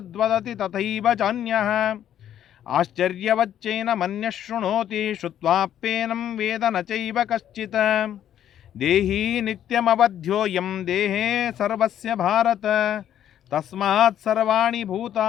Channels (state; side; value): quieter; right; 10.6 dB